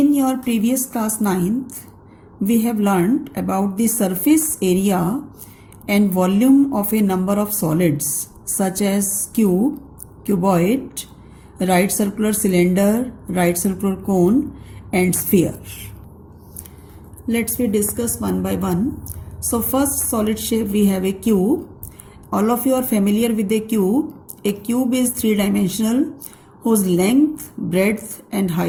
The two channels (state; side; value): identical; both; correlation 1.00